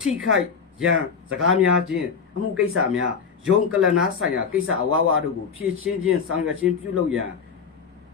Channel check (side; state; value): right; quieter; 6.0 dB